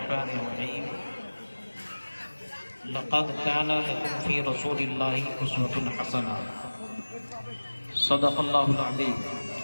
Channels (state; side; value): inverted; both; correlation -1.00